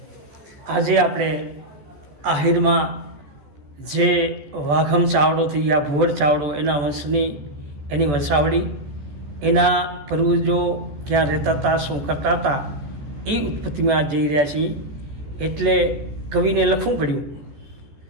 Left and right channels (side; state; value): left; late; 14 ms